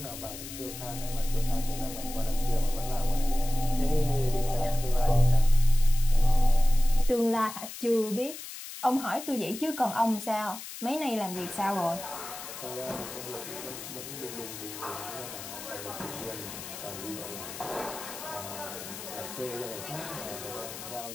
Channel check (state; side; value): noise; left; hiss, 11 dB below the sound